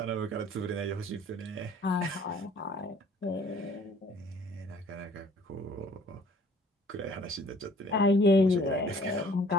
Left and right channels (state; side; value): normal; both; correlation 0.55